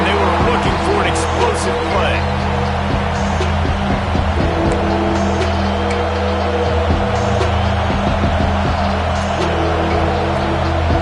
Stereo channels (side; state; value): both; identical; correlation 1.00